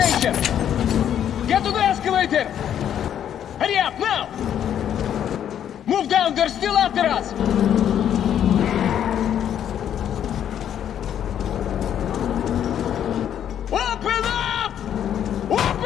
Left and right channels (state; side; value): quieter; right; 9.8 dB